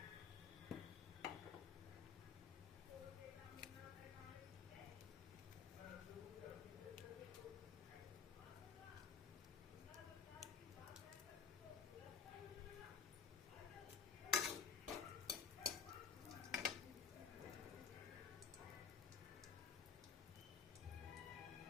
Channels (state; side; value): quieter; right; 6.4 dB